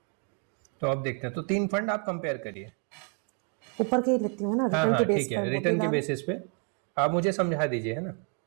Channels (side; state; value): left; quieter; 38.7 dB